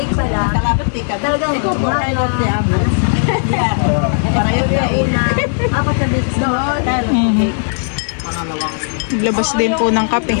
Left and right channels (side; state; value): right; silent; 69 dB below the other